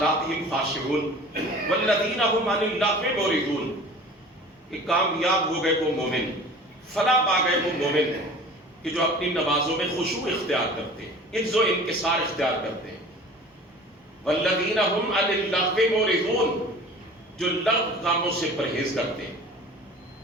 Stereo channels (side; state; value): both; normal; correlation 0.43